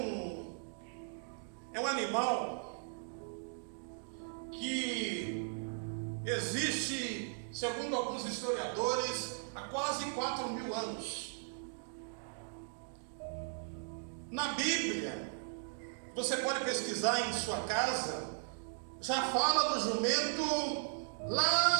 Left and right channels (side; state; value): left; silent; digital silence